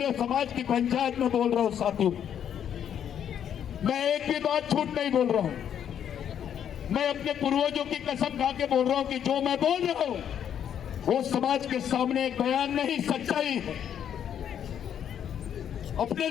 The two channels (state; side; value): quieter; right; 9.2 dB